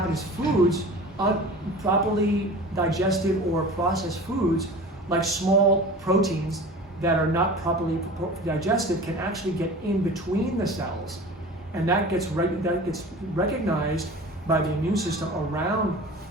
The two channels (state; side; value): normal; both; correlation 0.38